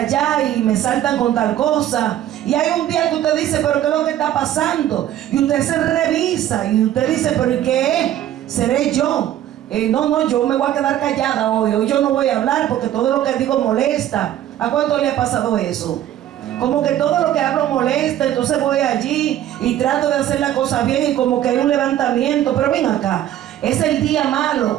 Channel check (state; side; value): quieter; left; 12.1 dB